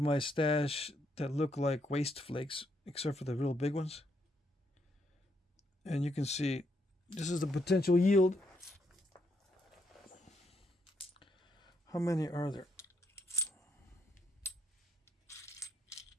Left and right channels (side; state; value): both; normal; correlation 0.75